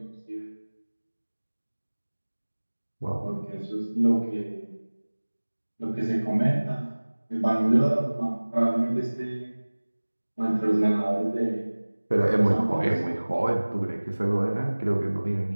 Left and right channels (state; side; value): inverted; both; correlation -1.00